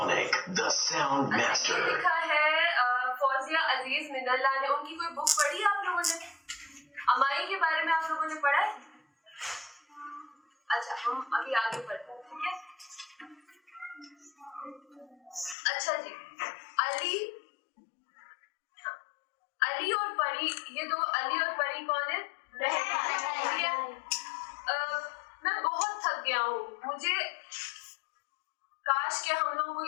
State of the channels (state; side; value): drops out; right; at 15.6 s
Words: the sound master. ये लिखा है फौजिया अजीज मिनल्ला ने, उनकी कोई बुक पढ़ी है आप लोगों ने? अमाई के बारे में आप लोगों ने पढ़ा है? अच्छा हम अभी आगे पढ़ते हैं, ठीक है। अच्छा जी, अली और परी, ये दो अली और परी कौन है? ठीक है। मैं बहुत थक गया हूँ, मुझे काश के हम लोगों को